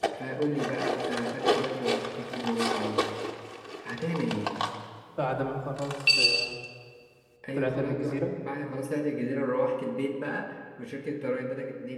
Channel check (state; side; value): identical; both; correlation 1.00